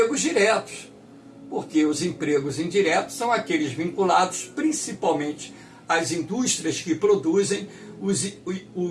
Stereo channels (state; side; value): identical; both; correlation 1.00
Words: diretos, porque os empregos indiretos são aqueles vinculados principalmente às indústrias que produzem